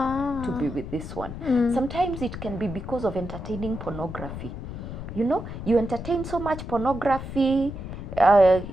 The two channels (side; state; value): left; noise; rumble, 9 dB below the sound